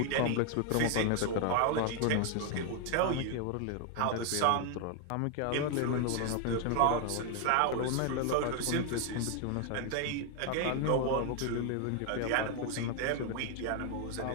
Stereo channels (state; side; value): different; both; correlation 0.01